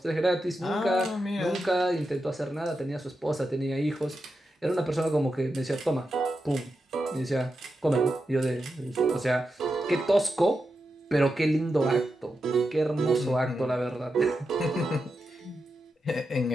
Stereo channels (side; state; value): both; normal; correlation 0.88